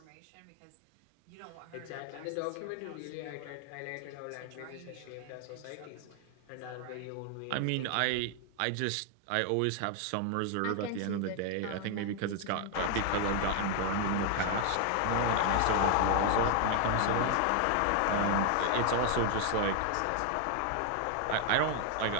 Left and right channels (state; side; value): different; both; correlation 0.00